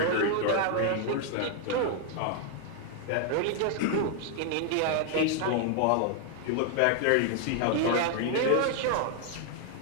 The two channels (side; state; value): both; different; correlation 0.00